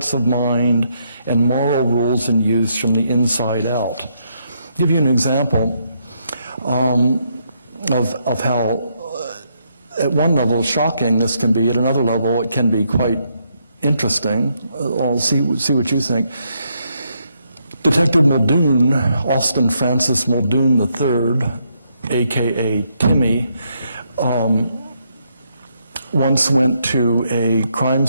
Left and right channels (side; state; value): both; inverted; correlation -0.76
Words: of mind and moral rules and use from the inside out. I'll give you an example of how at one level shocking this can be, at another level it can be quite interesting. I'll see what you think. Detective Muldoon, Austin Francis Muldoon III, a.k.a. Timmy, once went to a crime